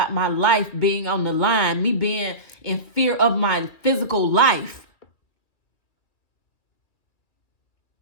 my life being on the line, me being in fear of my physical life.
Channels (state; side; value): late; right; 2.1 ms